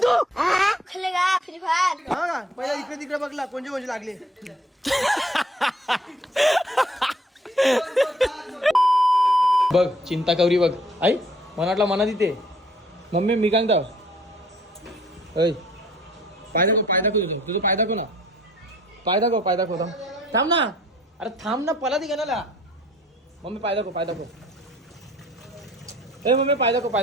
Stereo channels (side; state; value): both; normal; correlation 0.59